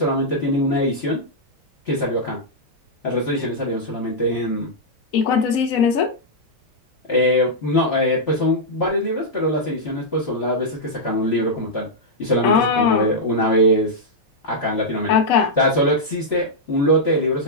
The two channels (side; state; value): both; normal; correlation -0.07